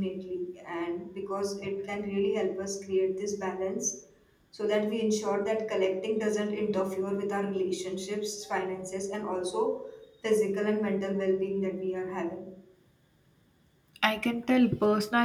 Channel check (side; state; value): both; identical; correlation 1.00